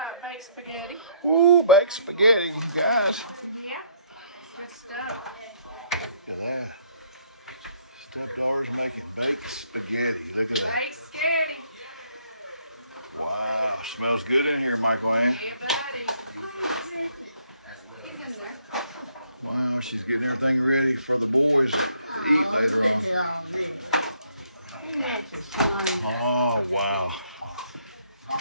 Baked spaghetti. Ooh, baked spaghetti, guys. Yeah, good stuff. Look at that. Stepdaughter's making baked spaghetti. Look at that. Baked spaghetti. Wow, smells good in here, Michael Ann. Yeah, buddy. He's in there. Wow, she's getting everything ready for the boys to eat later on. Oh, wow.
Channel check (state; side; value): inverted; both; correlation -0.67